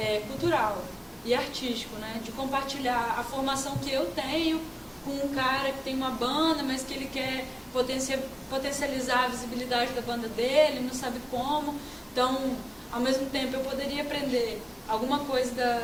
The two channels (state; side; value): identical; both; correlation 1.00